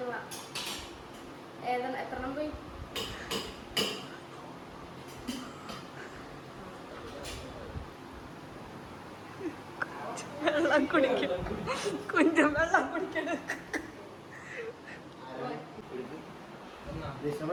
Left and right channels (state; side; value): identical; both; correlation 1.00